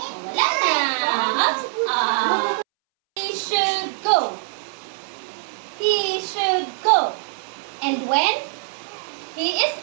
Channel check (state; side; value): silent; left; 63 dB below the other